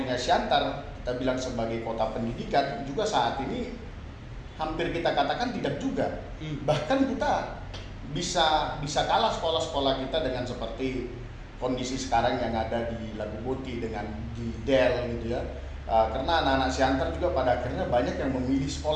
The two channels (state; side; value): identical; both; correlation 1.00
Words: Siantar, kita bilang sebagai kota pendidikan, juga saat ini hampir kita katakan tidak juga. Bahkan kita bisa kalah sekolah-sekolah kita dengan seperti kondisi sekarang yang ada di Lagu Boti dengan di Del gitu ya. Karena anak-anak Siantar juga pada akhirnya banyak yang memilih